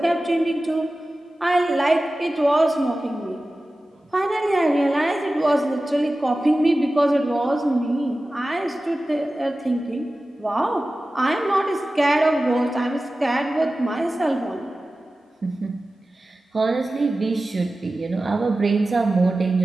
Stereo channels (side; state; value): both; normal; correlation 0.95